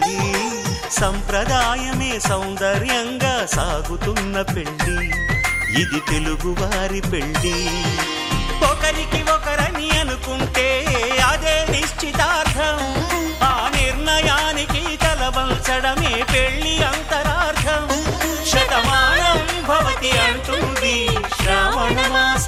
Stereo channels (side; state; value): both; identical; correlation 1.00